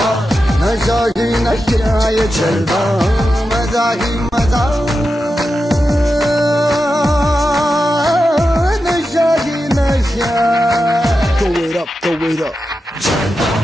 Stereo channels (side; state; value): both; normal; correlation 0.90